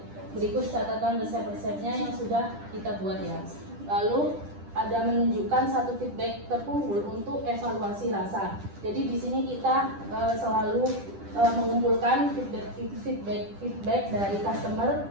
Berikut catatan resep-resepnya yang sudah kita buat ya. Lalu ada menunjukkan satu feedback terkumpul untuk evaluasi rasa. Jadi di sini kita selalu mengumpulkan feedback dari customer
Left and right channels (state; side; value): late; left; 10 ms